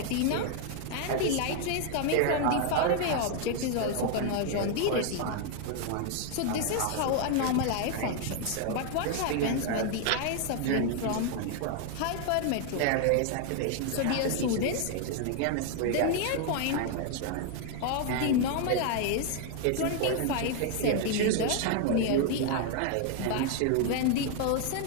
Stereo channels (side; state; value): both; different; correlation 0.00